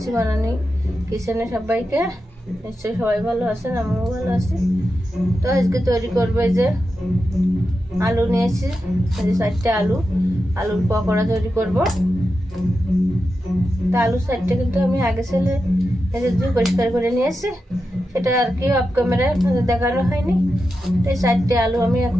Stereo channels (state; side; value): normal; both; correlation 0.89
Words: বানানি কিচেনে সবাইকে। নিশ্চয়ই সবাই ভালো আছেন, আমিও ভালো আছি। তো আজকে তৈরি করবো এই যে আলু নিয়েছি, 4টে আলুর পকোড়া তৈরি করব। তা আলু 4টে কিন্তু আমি আগে ছেলে পরিষ্কার করে নিয়েছি, সেটা আর কি অফ ক্যামেরায় দেখানো হয়নি। এই 4টে আলু আমি